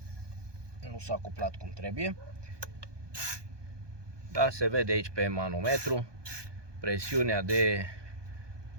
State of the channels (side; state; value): left; late; 1.2 ms